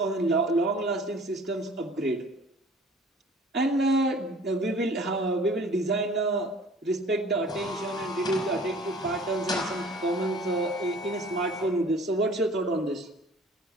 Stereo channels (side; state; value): both; normal; correlation 0.49